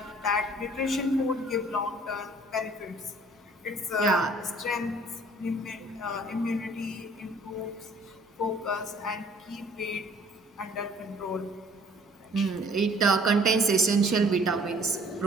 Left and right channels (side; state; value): both; normal; correlation 0.56